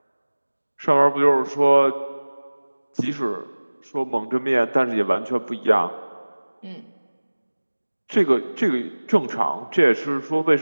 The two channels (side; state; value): both; inverted; correlation -1.00